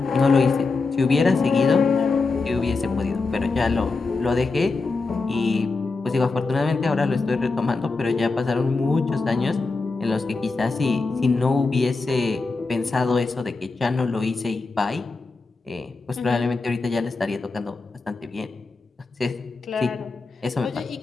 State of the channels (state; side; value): quieter; right; 3.9 dB